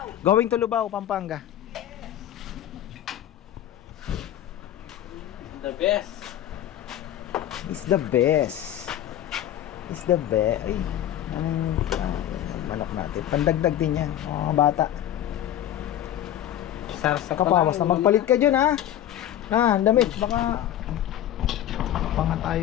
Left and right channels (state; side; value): quieter; right; 11.7 dB